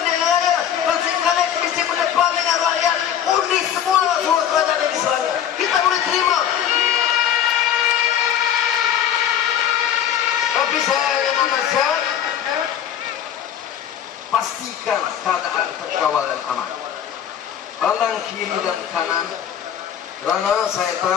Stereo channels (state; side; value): quieter; right; 9.6 dB